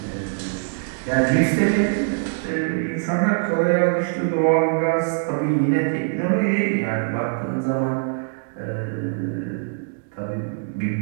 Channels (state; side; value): silent; left; digital silence